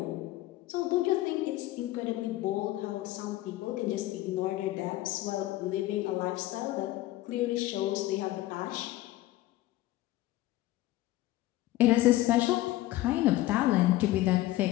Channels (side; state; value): right; quieter; 16.4 dB